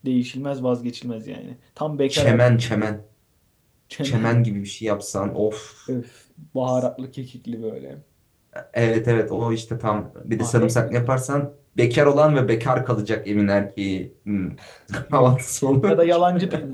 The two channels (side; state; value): both; identical; correlation 1.00